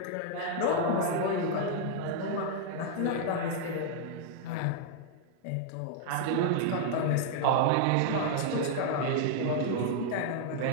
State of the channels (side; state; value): both; different; correlation -0.01